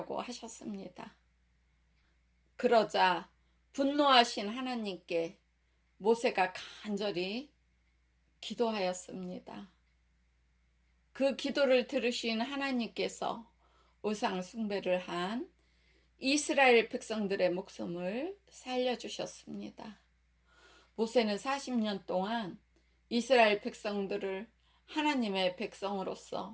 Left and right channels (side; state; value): both; identical; correlation 1.00